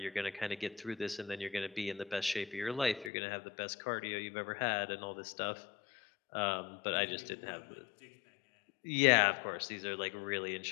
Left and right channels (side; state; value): right; drops out; at 3.1 s